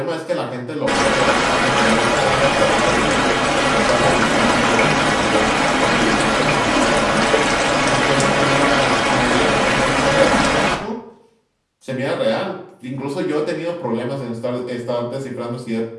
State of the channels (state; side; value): identical; both; correlation 1.00